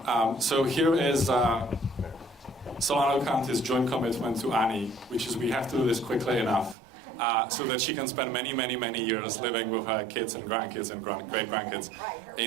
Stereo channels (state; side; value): drops out; left; at 6.8 s